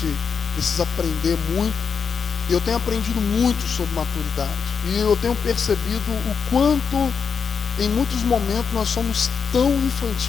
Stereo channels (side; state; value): right; quieter; 6.1 dB